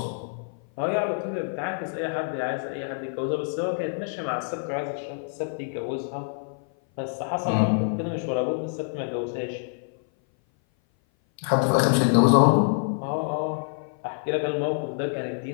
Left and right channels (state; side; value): silent; right; 57 dB below the other